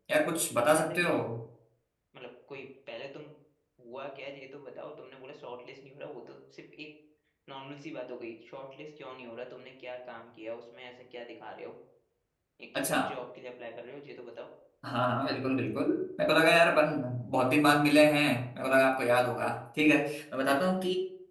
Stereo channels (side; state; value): both; identical; correlation 1.00